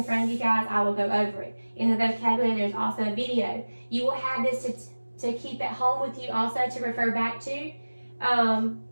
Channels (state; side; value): inverted; both; correlation -1.00